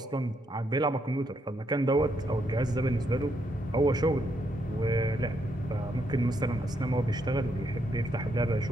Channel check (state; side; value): normal; both; correlation 0.77